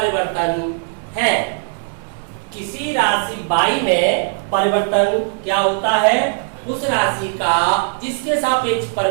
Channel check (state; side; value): silent; left; 67 dB below the other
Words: है। किसी राशि बाई में परिवर्तन क्या होता है? उस राशि का जिसके सापेक्ष